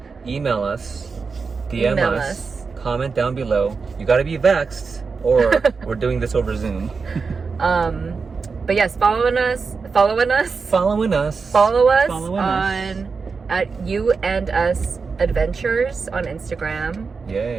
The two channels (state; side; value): quieter; left; 4.9 dB